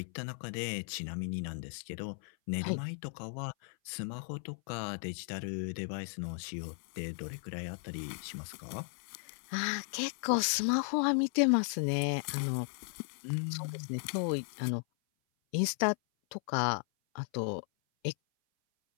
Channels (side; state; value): right; silent; 54 dB below the other